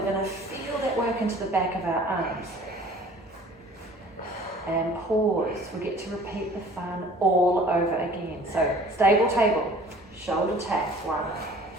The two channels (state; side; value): normal; both; correlation 0.49